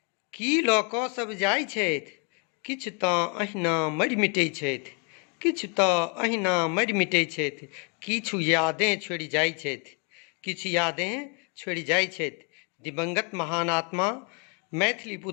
की लऽ कऽ सब जाइ छथि, किछु तऽ अहिना मरि मिटै छथि, किछु तऽ अहिना मरि मिटै छथि, किछु यादें छोड़ि जाइ छथि, किछु यादें छोड़ि जाइ छथि। दिवंगत महान आत्मा मैथिली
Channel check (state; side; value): quieter; right; 36.0 dB